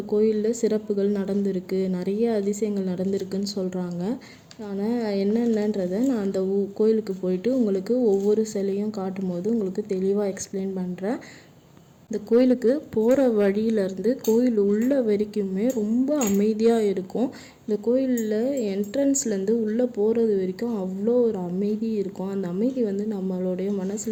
கோயிலில் சிறப்புகள் நடந்திருக்கு, நிறைய அதிசயங்கள் நடந்திருக்குன்னு சொல்கிறாங்க. ஆனால் என்னென்னன்றதை நான் அந்த கோயிலுக்கு போயிட்டு உங்களுக்கு ஒவ்வொரு சிலையும் காட்டும் போது உங்களுக்கு தெளிவாக எக்ஸ்பிளைன் பண்ணுறேன். இந்த கோயிலுக்கு போகிற வழியிலேருந்து கோயில் உள்ள வரைக்குமே ரொம்ப அமைதியாக இருக்கும். இந்த கோயிலில் என்ட்ரன்ஸ்லேருந்து உள்ளே போகிறது வரைக்கும் அவ்வளோ ஒரு அமைதி இருக்கும். அந்த அமைதி நம்மளுடைய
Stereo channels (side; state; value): both; identical; correlation 1.00